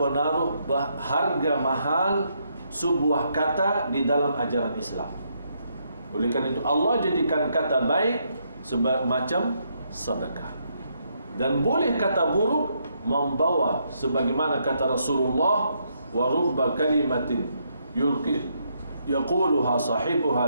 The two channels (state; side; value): inverted; both; correlation -0.76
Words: harga mahal sebuah kata di dalam ajaran Islam. Oleh karena itu Allah jadikan kata baik semacam sedekah. Dan boleh kata buruk membawa, sebagaimana kata Rasulullah, wa rubba kalimatin yaquluha